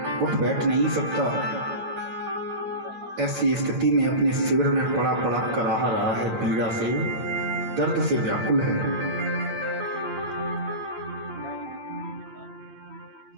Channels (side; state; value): left; late; 8.9 ms